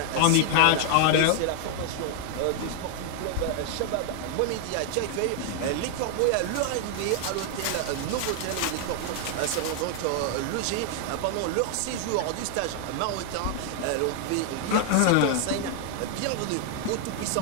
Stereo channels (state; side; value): different; both; correlation 0.00